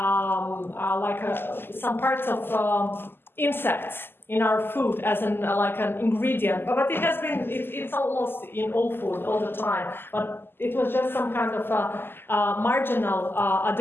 parts of insects in our food as like an ingredient, but it has been, it's almost in all food all the time, but it was just some kind of marginal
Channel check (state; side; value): late; right; 0.10 ms